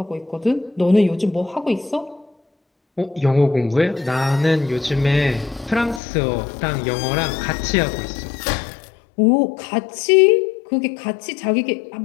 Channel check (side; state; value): right; drops out; at 6.0 s